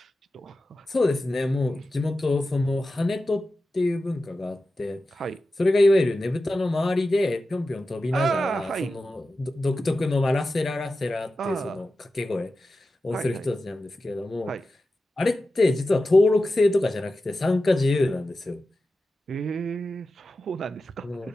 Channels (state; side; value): normal; both; correlation 0.93